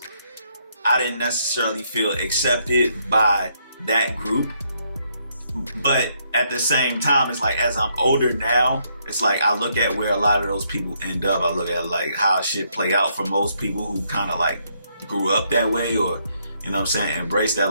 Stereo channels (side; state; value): both; inverted; correlation -0.73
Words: I didn't necessarily feel accepted by that group. But at the same time, it's like as I'm older now, it's like I look at where a lot of those people end up. I look at like how shit play out for most people who kind of like grew up that way, or you know what I'm saying, embrace that